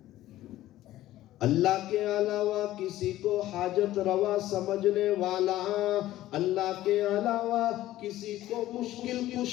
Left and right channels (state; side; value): quieter; right; 14.7 dB